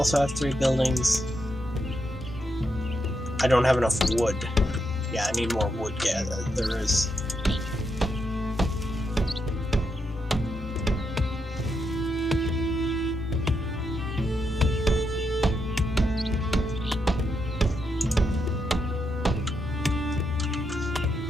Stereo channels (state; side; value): normal; both; correlation 0.82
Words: have 3 buildings. I don't have enough wood. Yeah, I need more wood. Yeah, there is.